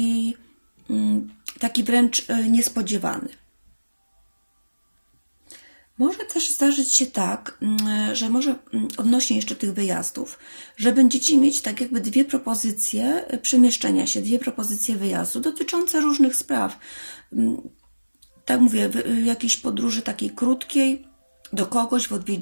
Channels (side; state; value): both; inverted; correlation -1.00